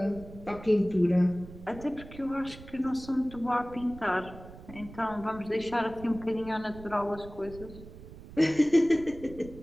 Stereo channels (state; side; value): noise; right; rumble, 16 dB below the sound